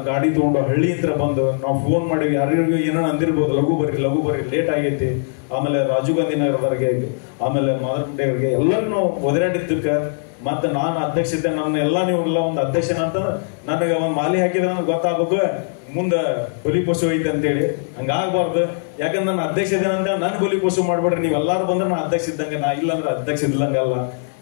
ಗಾಡಿ ತಗೊಂಡು ಹಳ್ಳಿಯಿಂದ ಬಂದು ನಾವು ಫೋನ್ ಮಾಡಿವಿ, ಯಾರಿಗೂ ಏನೋ ಅಂದಿರ್ಬೋದು, ಲಘು ಬರ್ರಿ ಲೇಟ್ ಆಗೈತಿ. ಆಮೇಲೆ ರಾಜೀವ್ ಗಾಂಧಿ ನಗರದವರಿಗೆ, ಆಮೇಲೆ ಮಾದರಗುಂಡೆ ಅವರಿಗೆ ಎಲ್ಲರೂ ನಾವು ಒದರಾಡಿದ್ದಕ್ಕೆ ಮತ್ತೆ ನಾನು ಅಧ್ಯಕ್ಷತೆ ನನ್ನ ಎಲ್ಲ ನೀವು ಎಲ್ಲ ಒಂದು ಅಧ್ಯಕ್ಷನ ಅಂತ ನನಗೆ ಒಂದು ಮಾಲಿ ಹಾಕಿದ್ರೆ ನನಗೆ ಗೊತ್ತಾಗಬೇಕು ಮುಂದೆ ಬಲಿ ಪಶು ಐತೆ ಅಂತೇಳಿ. ಹಂಗಾಗಬಾರ್ದು. ಯಾಕಂದ್ರೆ ನನ್ನ ಅಧ್ಯಕ್ಷ ಇದ್ದೇನಂತ ನನ್ ಬಲಿ ಪಶು ಮಾಡ್ಬೇಡ್ರಿ. ನೀವೆಲ್ಲಾರು ಬಂದ್ರೆ ನಾ ಅಧ್ಯಕ್ಷ ಇದ್ದಂಗೆ, ನಾ ಇಲ್ಲಾಂದ್ರೆ ಅಧ್ಯಕ್ಷ ಇದ್ದಂಗಲ್ಲ.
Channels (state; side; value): silent; right; digital silence